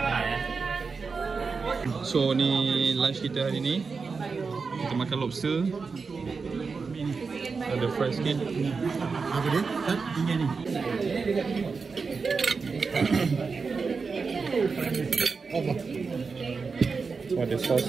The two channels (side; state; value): left; quieter; 4.8 dB